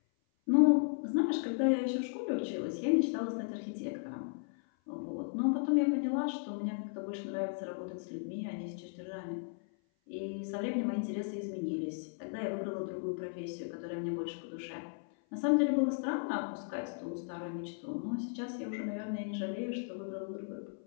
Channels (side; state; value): right; silent; 54 dB below the other